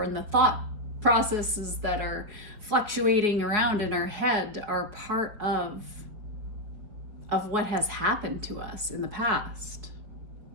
in the thought processes that are fluctuating around in our head, are part of what has happened to us in the past.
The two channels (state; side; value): late; left; 4.8 ms